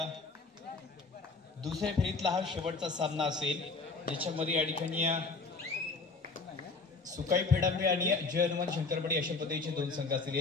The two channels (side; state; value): right; quieter; 3.9 dB